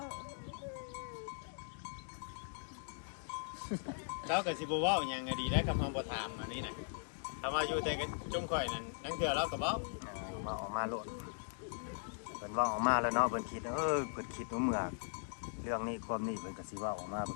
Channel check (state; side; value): silent; right; digital silence